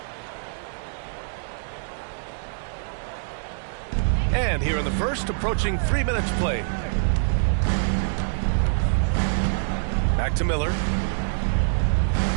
And here in the first, approaching 3 minutes played. Back to Miller.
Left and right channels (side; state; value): left; silent; digital silence